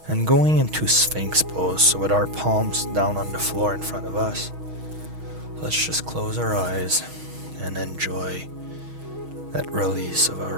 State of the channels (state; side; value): late; left; 6.3 ms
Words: and going into Sphinx pose, so with our palms down on the floor in front of us. Let's just close our eyes and enjoy that release of